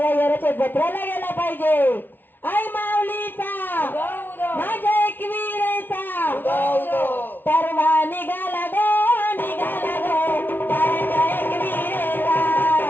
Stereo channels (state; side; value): late; right; 0.095 ms